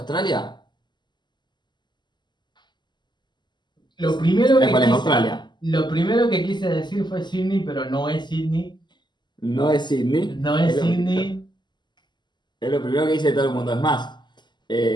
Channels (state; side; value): late; right; 0.21 ms